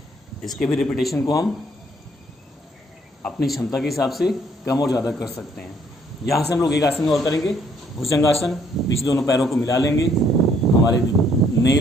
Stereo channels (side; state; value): both; normal; correlation 0.66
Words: इसके भी रिपीटेशन को हम अपनी क्षमता के हिसाब से कम और ज़्यादा कर सकते हैं। यहाँ से हम लोग एक आसन और करेंगे, भुजंगासन। पीछे दोनों पैरों को मिला लेंगे। हमारे